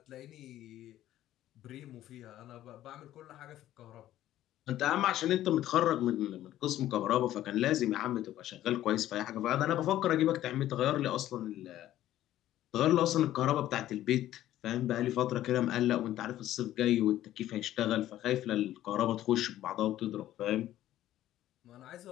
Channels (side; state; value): right; quieter; 13.4 dB